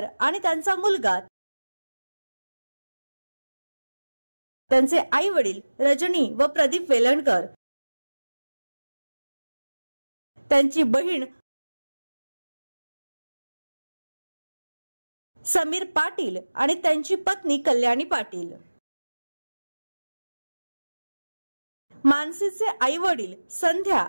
आणि त्यांचा मुलगा, त्यांचे आई वडील रजनी व प्रदीप वेलणकर, त्यांची बहीण समीर पाटील आणि त्यांची पत्नी कल्याणी पाटील, मानसीचे आई वडील संध्या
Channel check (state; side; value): inverted; both; correlation -1.00